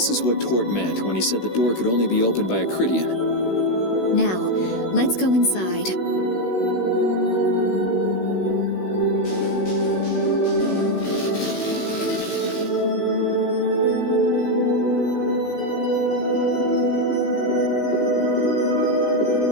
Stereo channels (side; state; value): right; late; 16 ms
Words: is what Tort meant when he said the door could only be opened by a Cridian. Now, let's go inside.